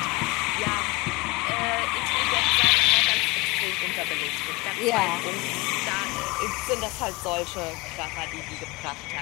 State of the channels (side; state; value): right; quieter; 24.3 dB